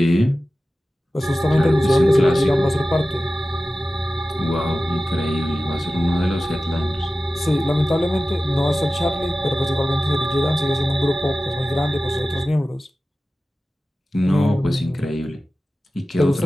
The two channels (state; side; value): normal; both; correlation 0.95